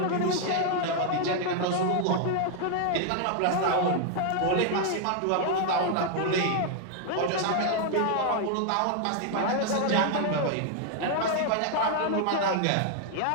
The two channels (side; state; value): both; different; correlation 0.00